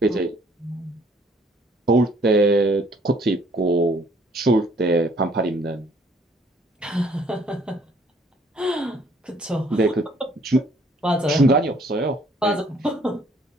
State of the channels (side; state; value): both; normal; correlation 0.61